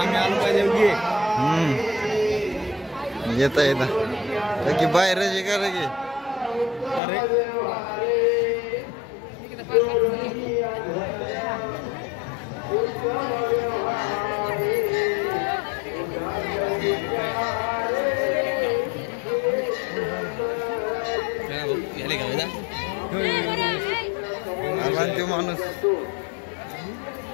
येता येता की बाहेर का लगे तो माणूस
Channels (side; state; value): right; drops out; at 7.0 s